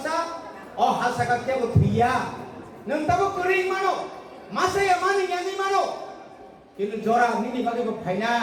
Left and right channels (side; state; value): both; identical; correlation 1.00